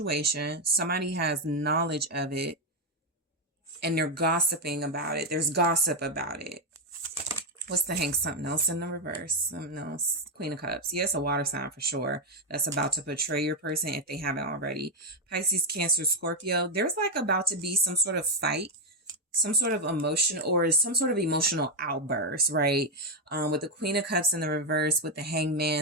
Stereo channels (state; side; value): normal; both; correlation 0.04